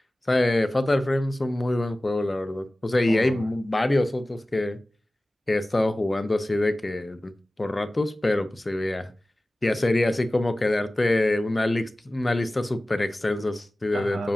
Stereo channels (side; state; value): both; normal; correlation 0.97